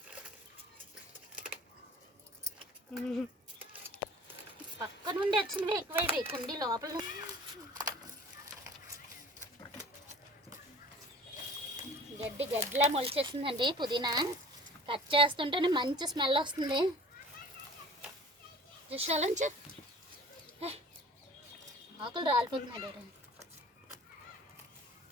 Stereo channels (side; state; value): both; normal; correlation 0.45